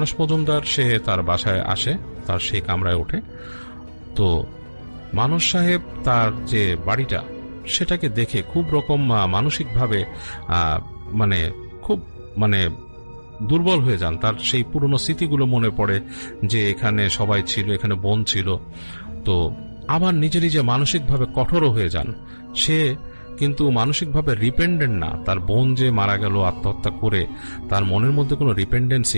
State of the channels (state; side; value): inverted; both; correlation -1.00